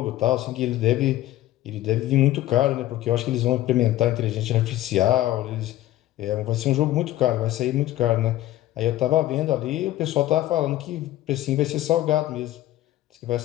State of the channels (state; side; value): quieter; right; 14.8 dB